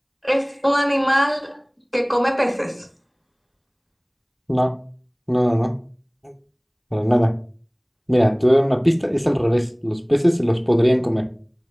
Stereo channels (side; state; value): both; identical; correlation 1.00